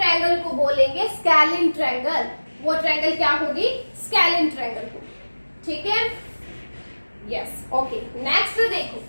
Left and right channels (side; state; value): both; inverted; correlation -1.00